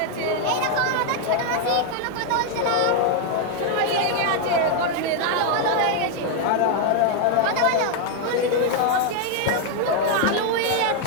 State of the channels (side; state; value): both; different; correlation 0.00